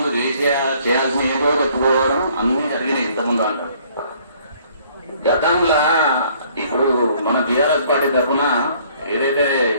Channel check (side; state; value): both; inverted; correlation -0.60